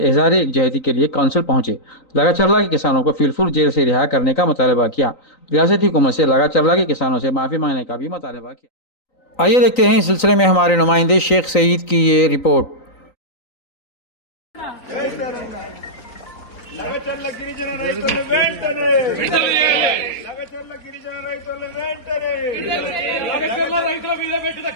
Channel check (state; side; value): late; right; 3.9 ms